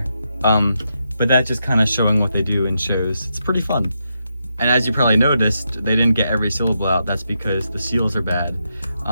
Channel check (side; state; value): both; inverted; correlation -0.83